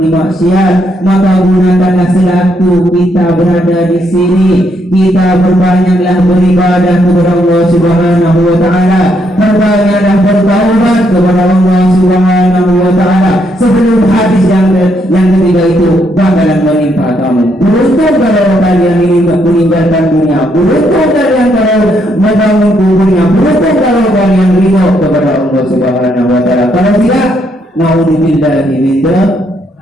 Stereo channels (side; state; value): both; normal; correlation 0.75